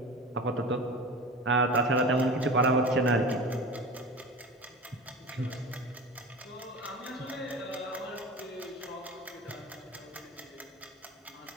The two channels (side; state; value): both; normal; correlation 0.32